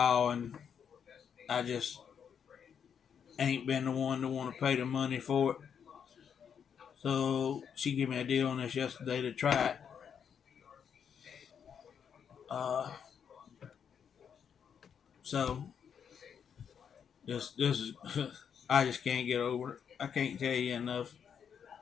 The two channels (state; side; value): quieter; right; 7.6 dB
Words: and I just ain't been the one to want to pay the money for it. So she gave me a deal on this yesterday to try it. Uh, so this is I just can't get over it. I can't tell you enough.